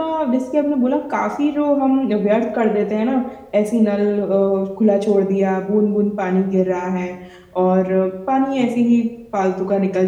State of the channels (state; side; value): identical; both; correlation 1.00